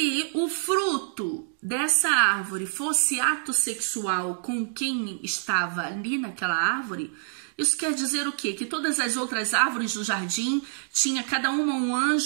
o fruto dessa árvore fosse ato sexual com quem estava ali naquela árvore, isso quer dizer o quê? Que todas as outras árvores do jardim tinha cada uma um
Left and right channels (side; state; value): left; silent; digital silence